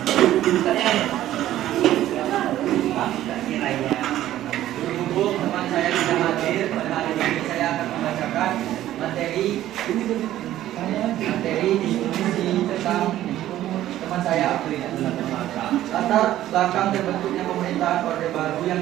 Berhubung teman saya tidak hadir pada hari ini, saya akan membacakan materi diskusi tentang teman saya April. Latar belakang terbentuknya pemerintahan Orde Baru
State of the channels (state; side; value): quieter; left; 13.4 dB